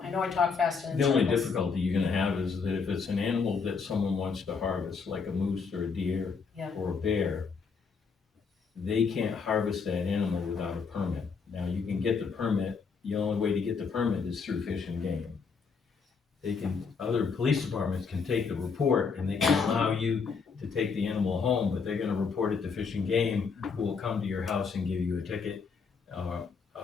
I know I talk fast and in The only circles. difficulty you're gonna have is that if it's an animal that someone wants to harvest, like a moose or a deer Yeah. or a bear, they can't harvest that animal without a permit. Now, you can get the permit, the only way to get the permit is through Fish and Game. Other police departments can take the report and they can allow you to take the animal home, but they're gonna report it to Fish and Game, who will come to your house and give you a ticket, a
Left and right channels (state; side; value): quieter; right; 5.4 dB